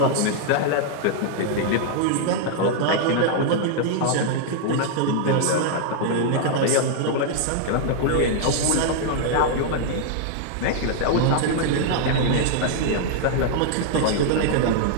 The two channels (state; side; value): different; both; correlation -0.01